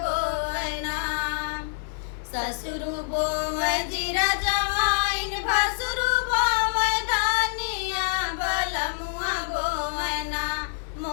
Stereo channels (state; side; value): silent; right; digital silence